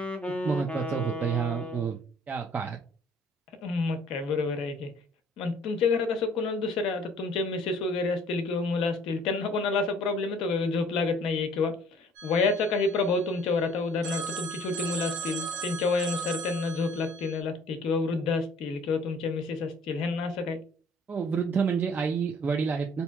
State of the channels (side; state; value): both; normal; correlation 0.56